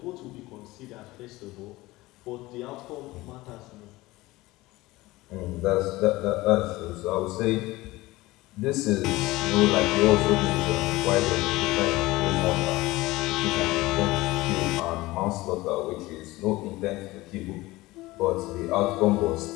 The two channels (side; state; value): right; quieter; 19.5 dB